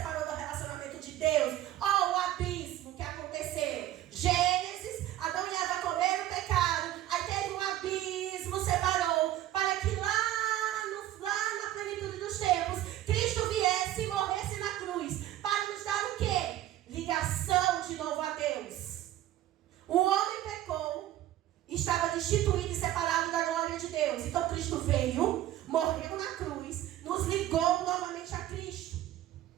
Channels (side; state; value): left; quieter; 13.4 dB